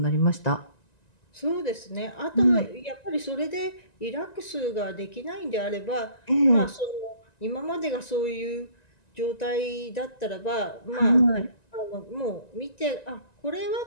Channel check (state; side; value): late; right; 1.9 ms